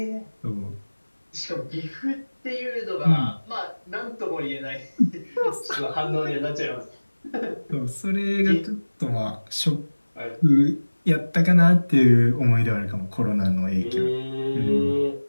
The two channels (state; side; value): inverted; both; correlation -1.00